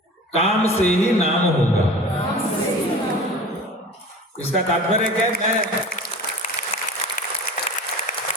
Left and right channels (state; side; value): normal; both; correlation 0.37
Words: काम से ही नाम होगा। इसका तात्पर्य क्या है? मैं